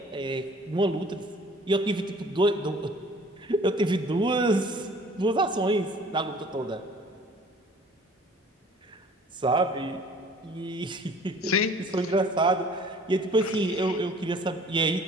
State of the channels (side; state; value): both; normal; correlation 0.51